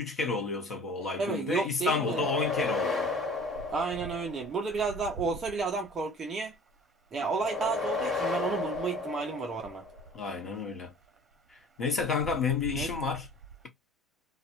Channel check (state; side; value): normal; both; correlation 0.46